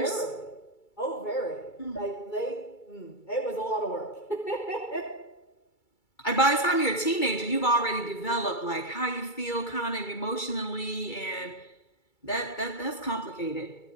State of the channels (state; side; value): late; right; 2.3 ms